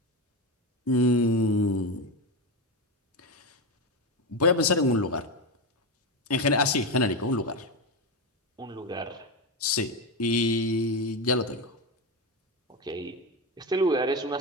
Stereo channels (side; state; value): both; normal; correlation 0.15